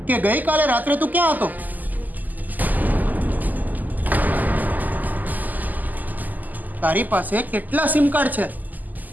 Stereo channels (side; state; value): left; late; 0.083 ms